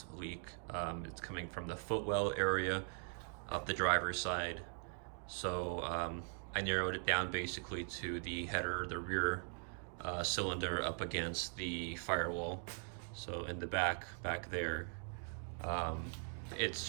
leak. It's coming from the footwell area up the driver's side. So I narrowed it down basically to the header, the rear cylinder up against the firewall. So in the back there, um,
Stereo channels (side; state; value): left; silent; 50 dB below the other